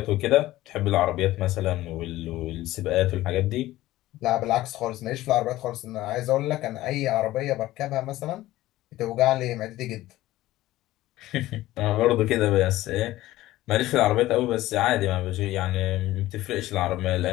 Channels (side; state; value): right; quieter; 16.2 dB